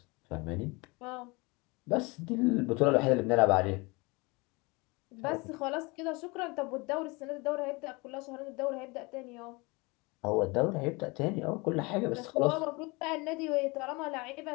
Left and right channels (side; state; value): right; quieter; 26.3 dB